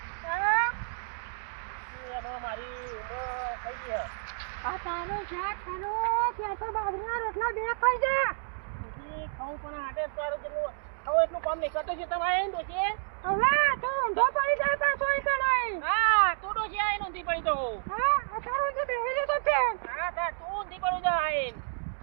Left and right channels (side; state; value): left; silent; digital silence